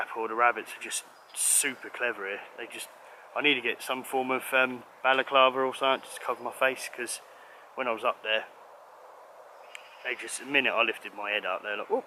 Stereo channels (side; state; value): both; identical; correlation 1.00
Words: or the rabbits are just super clever here. I need to get some form of balaclava or something just to cover my face, because when I was up there, the minute I lifted my head up, they're like, oh,